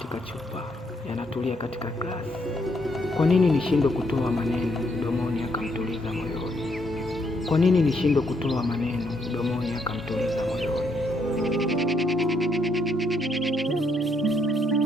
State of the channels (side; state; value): both; normal; correlation 0.74